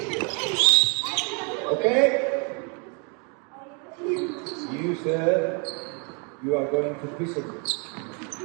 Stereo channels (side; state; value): left; quieter; 35.8 dB